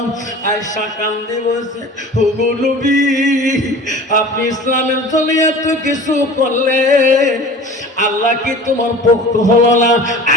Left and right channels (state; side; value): normal; both; correlation 0.40